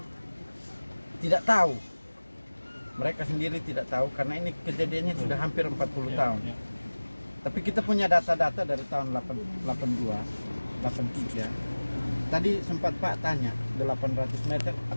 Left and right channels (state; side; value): inverted; both; correlation -1.00